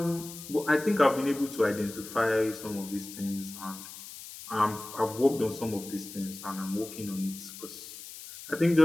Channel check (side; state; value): left; noise; hiss, 13 dB below the sound